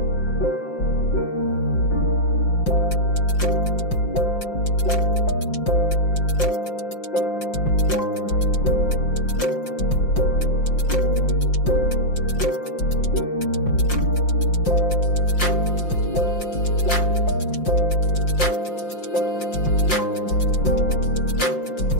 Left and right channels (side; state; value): right; late; 5.7 ms